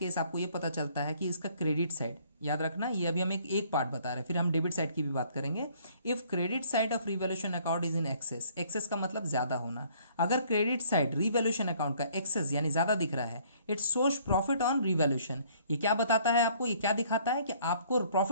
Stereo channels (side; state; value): both; inverted; correlation -0.60